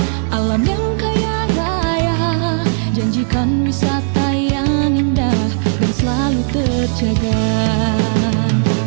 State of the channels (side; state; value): left; silent; 64 dB below the other